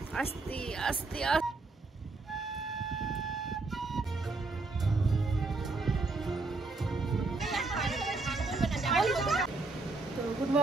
আস্তে আস্তে তো good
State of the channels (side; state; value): left; quieter; 3.5 dB